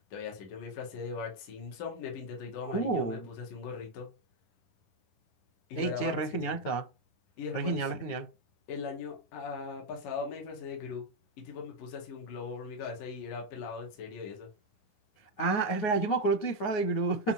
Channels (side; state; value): right; late; 9.5 ms